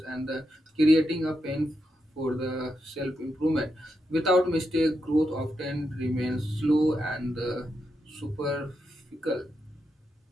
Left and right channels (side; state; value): both; normal; correlation 0.85